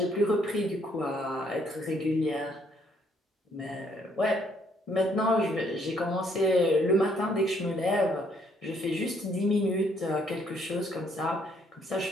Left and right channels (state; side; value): normal; both; correlation 0.68